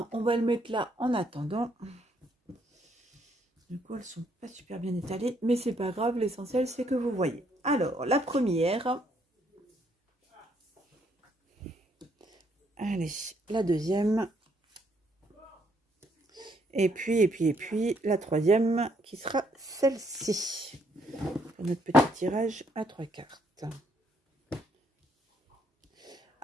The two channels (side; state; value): both; normal; correlation 0.71